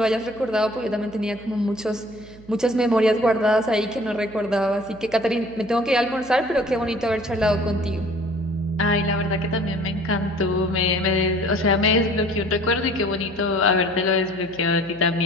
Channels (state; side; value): noise; right; hum, 21 dB below the sound